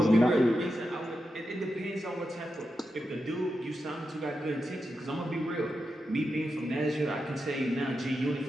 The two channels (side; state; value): both; normal; correlation 0.88